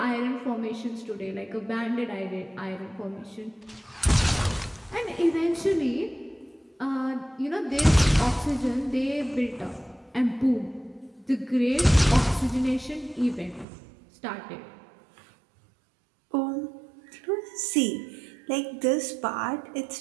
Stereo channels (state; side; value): drops out; left; at 13.7 s